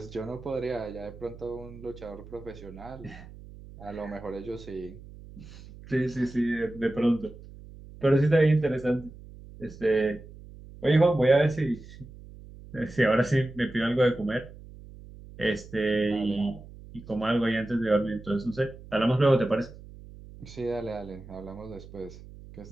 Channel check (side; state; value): right; noise; hum, 17 dB below the sound